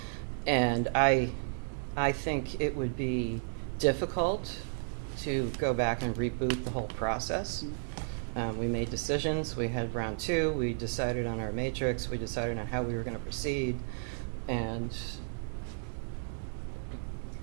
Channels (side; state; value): left; silent; 56 dB below the other